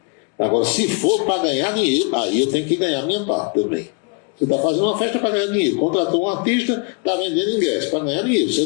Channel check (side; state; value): right; quieter; 34.5 dB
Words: Agora, se for para ganhar dinheiro, aí eu tenho que ganhar minha parte também. Você está fazendo uma festa para ganhar dinheiro. Contratou um artista, está vendendo ingresso para ganhar dinheiro. Você